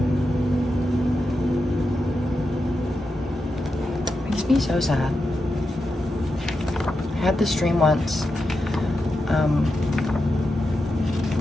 It makes me so sad. I had this dream once.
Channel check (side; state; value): both; normal; correlation 0.88